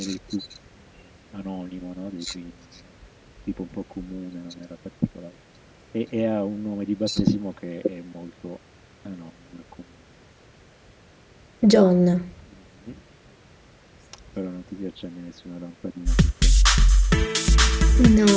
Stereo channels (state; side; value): identical; both; correlation 1.00